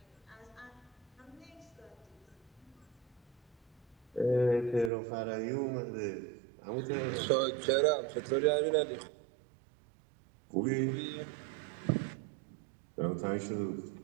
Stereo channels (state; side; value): drops out; left; at 4.9 s